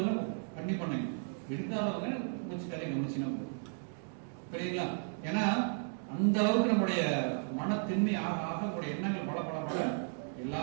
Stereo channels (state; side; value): silent; left; 55 dB below the other